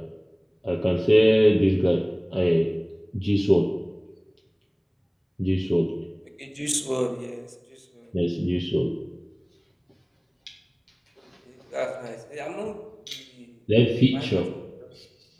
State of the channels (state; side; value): identical; both; correlation 1.00